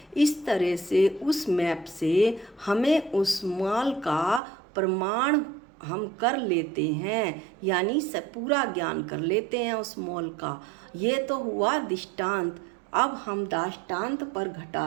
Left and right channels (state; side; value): drops out; left; at 4.4 s